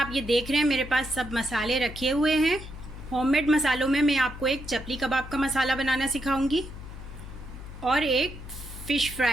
ये देख रहे हैं, मेरे पास सब मसाले रखे हुए हैं। होममेड मसालों में मैं आपको एक चपली कबाब का मसाला बनाना सिखाऊंगी और एक फ़िश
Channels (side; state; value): left; noise; hum, 12 dB below the sound